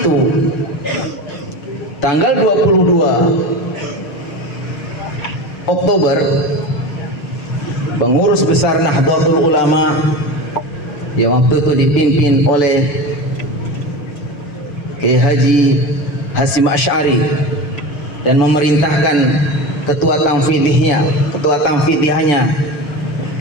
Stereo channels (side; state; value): right; late; 6.6 ms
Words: tanggal 22 Oktober, pengurus besar Nahdlatul Ulama yang waktu itu dipimpin oleh Kiai Haji Hasyim Asy'ari dan memerintahkan ketua tanfidiyahnya